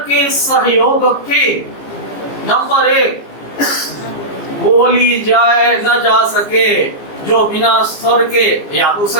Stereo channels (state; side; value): late; right; 14 ms